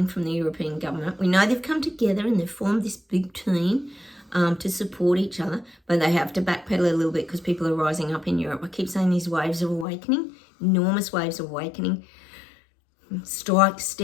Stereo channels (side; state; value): right; drops out; at 9.9 s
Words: from the European government. We know they've come together and they've formed this big team to support each other, but they have to backpedal a little bit because people are rising up in Europe. I keep saying these waves of awakening, enormous waves of awakening, strikes,